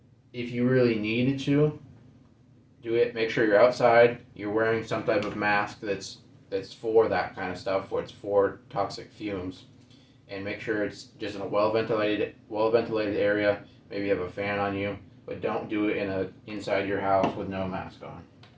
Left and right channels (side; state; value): both; identical; correlation 1.00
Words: If you really needed to do it, make sure you're outside, you're wearing some type of mask that's for that kind of stuff, where it's for toxic fumes. And make sure it's just in a well ventilated area. Maybe you have a fan on you, but don't do it inside your house with no mask on.